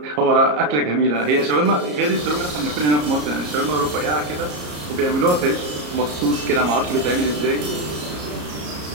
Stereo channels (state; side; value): late; left; 34 ms